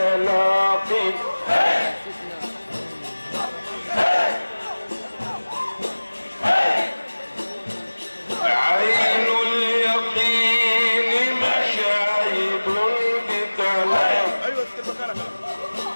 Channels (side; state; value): both; inverted; correlation -1.00